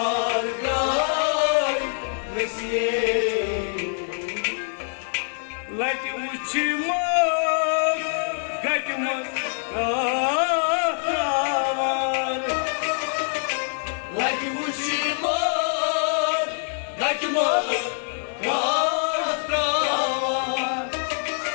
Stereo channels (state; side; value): silent; right; digital silence